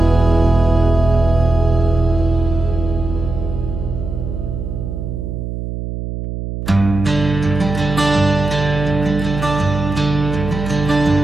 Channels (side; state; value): right; noise; hum, 6 dB below the sound